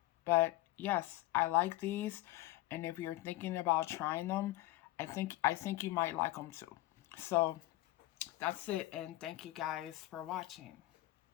But yes, I like these, and if you're thinking about trying them, I think you might like them too. So that's it, and thank you guys for watching.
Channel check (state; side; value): quieter; right; 17.5 dB